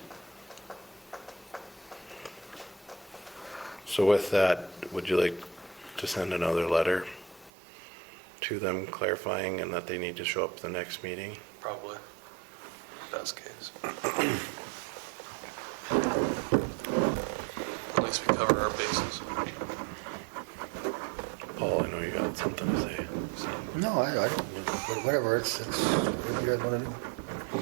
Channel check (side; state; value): left; drops out; at 7.5 s